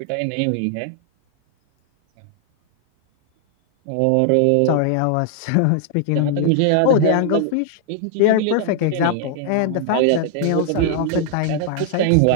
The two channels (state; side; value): different; both; correlation 0.00